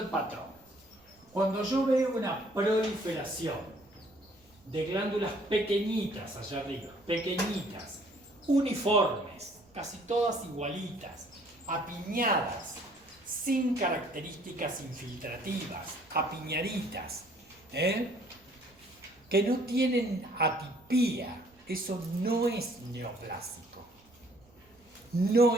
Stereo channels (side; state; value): right; noise; rumble, 30 dB below the sound